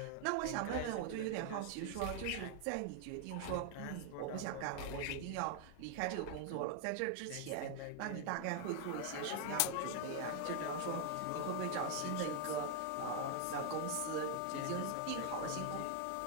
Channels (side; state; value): both; different; correlation 0.00